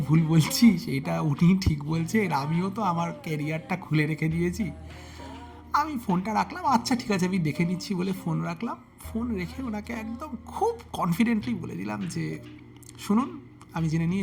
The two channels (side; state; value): both; identical; correlation 1.00